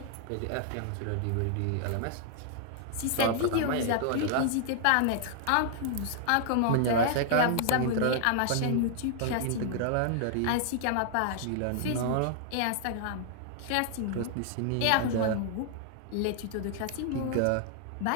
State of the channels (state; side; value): different; both; correlation 0.00